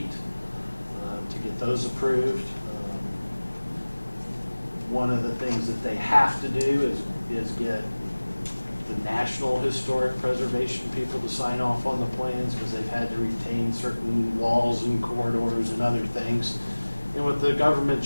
to get those approved. One of the things that they have to do is get the National Historic Preservation people to sign off on the plans, because they've had to retain certain walls and corridors and other things. And with the government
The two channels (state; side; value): inverted; both; correlation -1.00